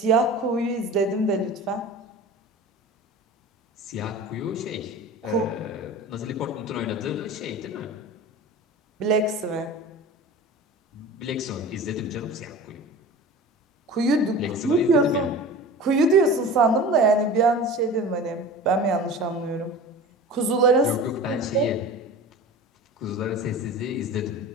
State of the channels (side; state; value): both; normal; correlation 0.36